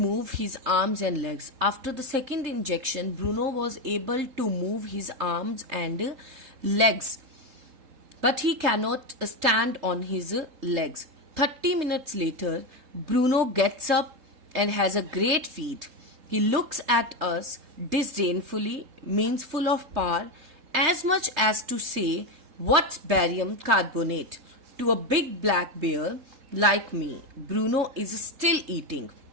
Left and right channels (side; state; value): left; late; 3.3 ms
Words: move his arms and legs. After the second injection, Bruno was able to move his arms and legs, but he cannot stand on his legs. 30 minutes later, Bruno gets up and has a great feat. He looks at us disdainfully, means full of power, as much as to say, what's barium carbonate? To a big black bear like me. Bruno is still eating.